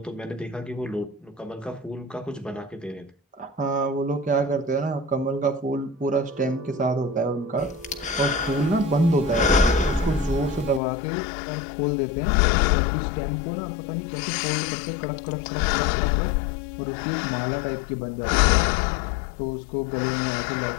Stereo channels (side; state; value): right; drops out; at 10.8 s